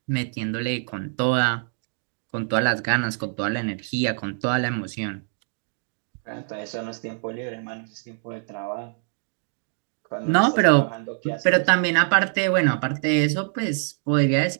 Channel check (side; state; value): left; silent; digital silence